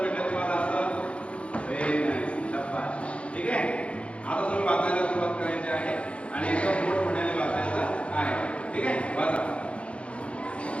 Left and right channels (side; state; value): right; late; 0.061 ms